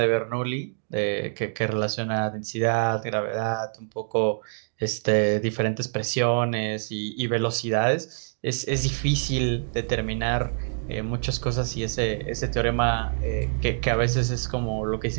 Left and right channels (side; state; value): left; silent; digital silence